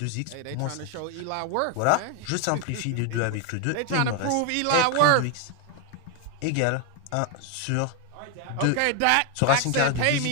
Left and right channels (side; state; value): both; different; correlation 0.01